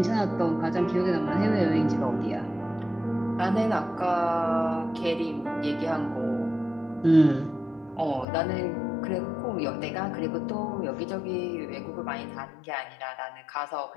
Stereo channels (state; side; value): drops out; right; at 8.2 s